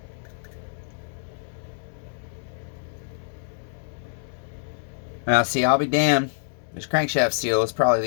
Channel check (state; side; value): silent; right; 61 dB below the other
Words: Now, see, I'll be damned. This crankshaft seal is probably